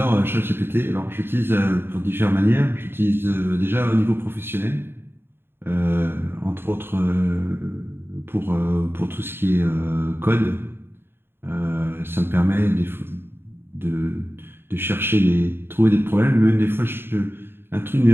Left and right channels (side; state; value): left; late; 0.11 ms